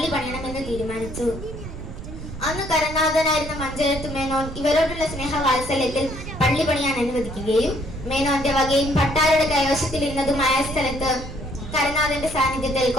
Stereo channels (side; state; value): right; noise; rumble, 10 dB below the sound